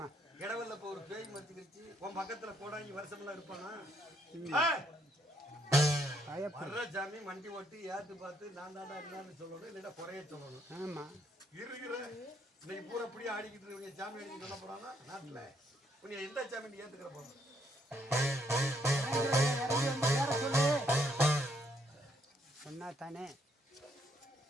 இடவல்ல இப்ப ஒரு பேய் மத்திக்கிருச்சு. உன் பக்கத்துல கோடாங்கி வருஷமெல்லாம் இருப்பானா? வர்ற சாமி மண்டி ஓட்டி ஏத்து பார்த்து நான் தாண்டா என்னன்னு சொல்லணும், இல்லைன்னா குறைய சொல்லணும். இருக்கிற இன்னைக்கு பூரா அப்படியே ஆடிக்கிட்டு இருக்கீங்க. சாமி அடிக்க சொல்ல போறானா நாட்டுல? நீ எந்த சாமி ஏத்துக்கிற போற? சொன்னா தானே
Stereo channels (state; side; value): normal; both; correlation 0.71